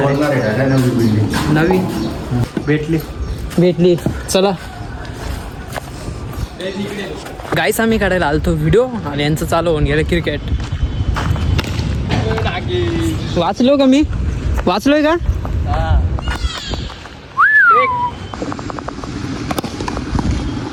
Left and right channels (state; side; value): identical; both; correlation 1.00